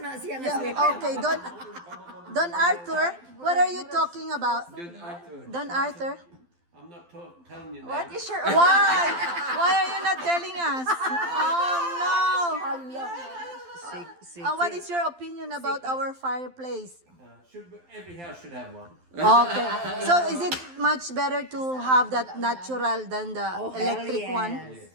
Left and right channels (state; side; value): late; left; 12 ms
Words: siya nga Yeah, sleeper. okay, Don Arthur. What are you talking about? Don't Arthur. Don Arthur. I'm not telling you What that. is your Why? Why are you not telling us? Oh no. What is your opinion about our fireplace? Every house should have one. Okay. So is it much better to have that natural than the electric one?